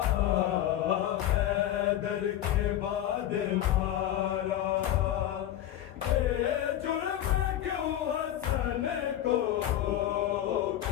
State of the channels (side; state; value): right; quieter; 12.1 dB